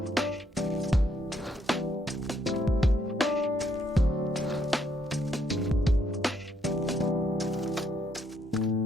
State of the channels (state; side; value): normal; both; correlation 0.73